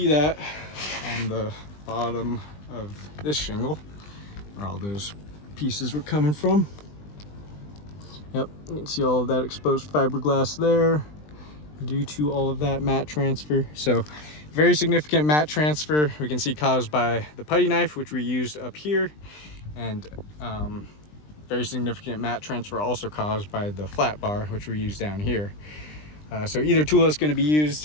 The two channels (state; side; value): late; right; 20 ms